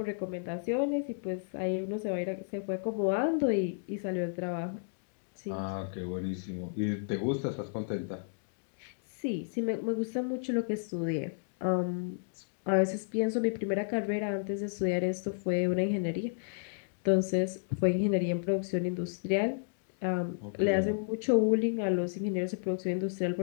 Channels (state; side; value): silent; right; digital silence